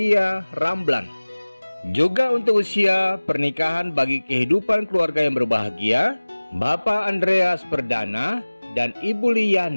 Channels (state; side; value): inverted; both; correlation -1.00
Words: Ramblan. Juga untuk usia pernikahan bagi kehidupan keluarga yang berbahagia, Bapak Andreas Perdana dan Ibu